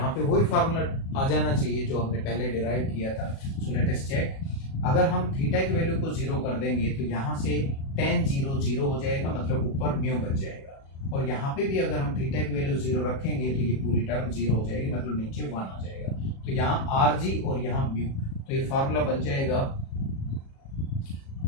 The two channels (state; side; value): late; right; 37 ms